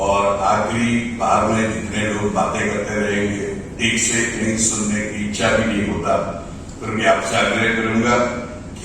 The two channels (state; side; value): identical; both; correlation 1.00